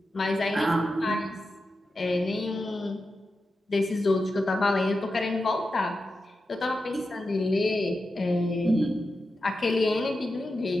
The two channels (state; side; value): normal; both; correlation 0.90